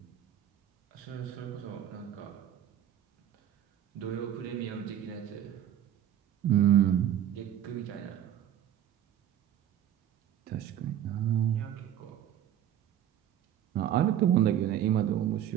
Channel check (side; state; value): left; quieter; 11.0 dB